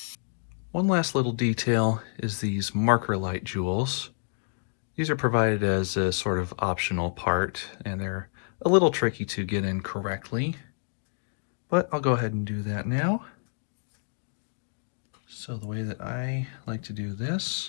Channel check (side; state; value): right; silent; digital silence